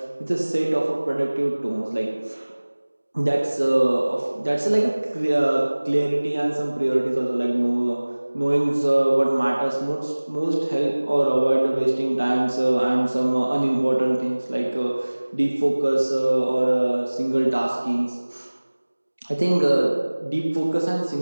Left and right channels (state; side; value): inverted; both; correlation -1.00